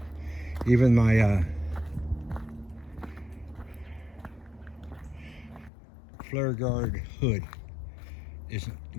Even my flare guard hood isn't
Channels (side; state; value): right; drops out; at 5.7 s